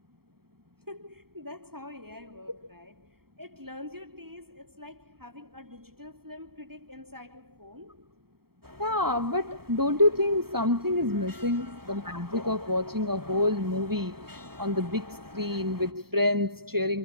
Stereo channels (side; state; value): left; late; 0.95 ms